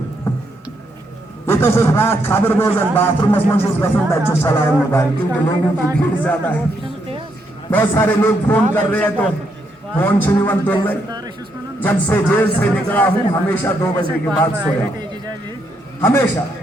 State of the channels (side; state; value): both; normal; correlation 0.77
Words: ये तो सिर्फ रात खबर बोझन बाथरूम में चलाओ मोबाइल, क्योंकि लोगों की भीड़ ज्यादा है। बहुत सारे लोग फोन कर रहे हैं तो फोन छुनिवन तुल रहे। जब से जेल से निकला हूं हमेशा 2 बजे के बाद सोया, हमेशा,